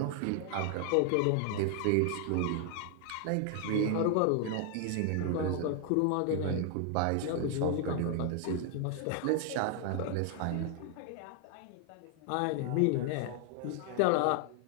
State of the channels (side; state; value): both; different; correlation 0.00